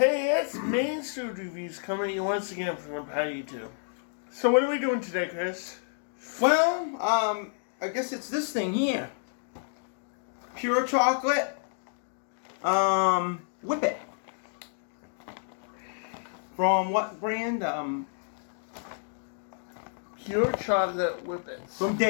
it's MAINE'S food reviews coming at you once again from Empire YouTube. So what are we doing today, Chris? Well, I guess it's this thing here. Pure chocolate, Whippet. From what brand? Pure chocolate Whippet. From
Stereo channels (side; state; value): right; silent; digital silence